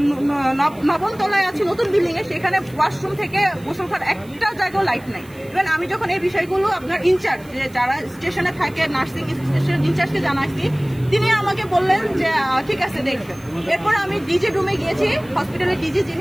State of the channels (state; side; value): noise; right; hiss, 25 dB below the sound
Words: 9ম তলায় আছি, নতুন বিল্ডিং এ, সেখানে ওয়াশরুম থেকে গোসল করার একটা জায়গাও লাইট নাই। ইভেন আমি যখন এই বিষয়গুলো আপনার ইনচার্জ যারা স্টেশনে থাকে, নার্সিং স্টেশনের ইনচার্জকে জানাইছি, তিনি আমাকে বললেন যে ঠিক আছে দেখবেন। এরপর আমি ডিজি রুমে গিয়েছি, হসপিটালের ডিজি